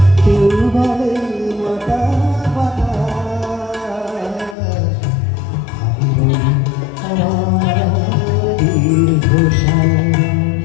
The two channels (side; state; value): right; drops out; at 4.5 s